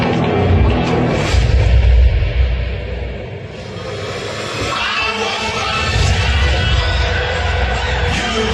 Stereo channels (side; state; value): both; identical; correlation 1.00